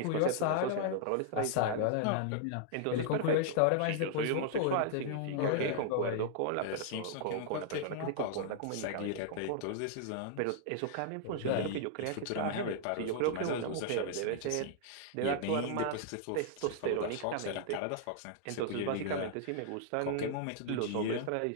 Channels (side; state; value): both; different; correlation -0.01